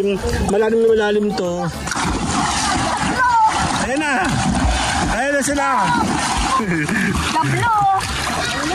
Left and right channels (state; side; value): identical; both; correlation 1.00